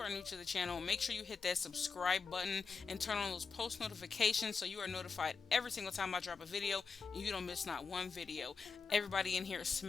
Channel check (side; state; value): right; quieter; 5.1 dB